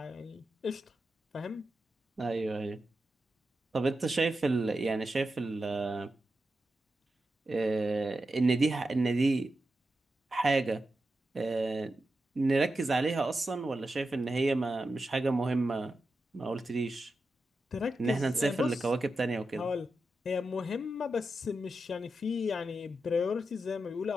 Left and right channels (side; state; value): both; normal; correlation 0.89